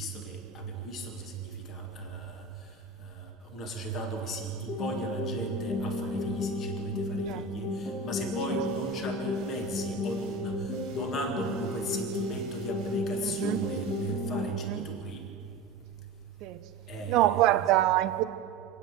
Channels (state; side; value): quieter; left; 3.9 dB